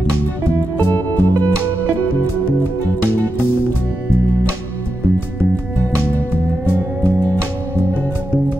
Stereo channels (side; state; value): both; normal; correlation 0.88